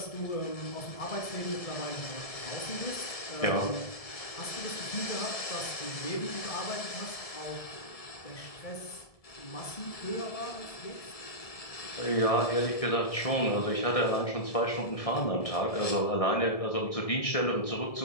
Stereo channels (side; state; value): right; late; 1.7 ms